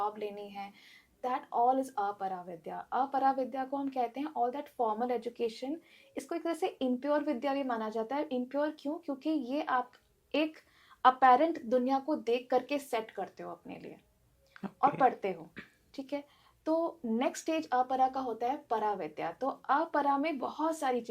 लेनी है, दैट ऑल इज अपरा विद्या। अपरा विद्या को हम कहते हैं ऑल दैट फॉर्मल एजुकेशन। इसको एक तरह से इम्प्योर विद्या भी माना जाता है। इम्प्योर क्यों? क्योंकि ये आप एक अपेरेंट दुनिया को देख करके सेट करते हो अपने लिए और Okay. पढ़ते हो, ठीक है। तो नेक्स्ट स्टेज अपरा का होता है परा विद्या। तो अपरा में बहुत सारी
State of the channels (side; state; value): both; identical; correlation 1.00